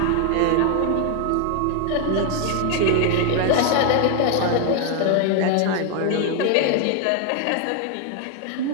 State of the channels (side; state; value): both; different; correlation 0.01